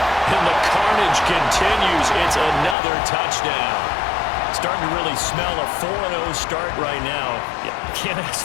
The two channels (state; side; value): drops out; right; at 2.8 s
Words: And the carnage continues. It's another touchdown. Starting to really smell a 4-0 start right now. You can't